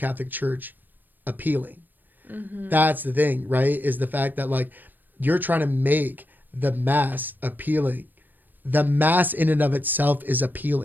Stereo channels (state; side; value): late; left; 0.090 ms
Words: Church appealing. Mm-hmm. That's the thing, right? Is the fact that like you're trying to make the mass appealing. The mass in and of itself is